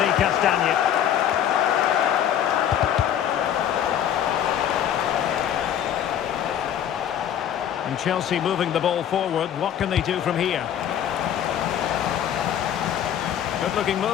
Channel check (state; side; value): quieter; right; 10.0 dB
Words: Castagne. And Chelsea moving the ball forward. What can they do from here? Good looking